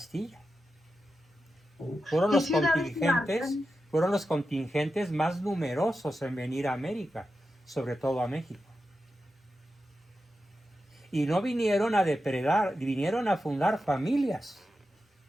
Fueron ¿Qué los ciudades contingentes, marcan? fueron los contingentes más numerosos en venir a América, sobre todo a México. Y no vinieron a depredar, vinieron a fundar familias.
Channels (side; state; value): both; normal; correlation 0.90